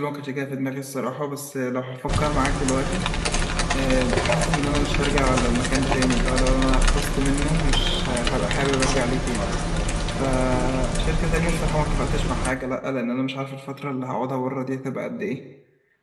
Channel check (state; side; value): identical; both; correlation 1.00